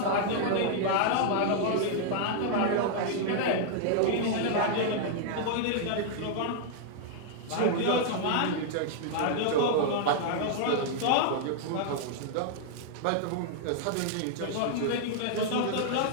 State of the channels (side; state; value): both; different; correlation -0.01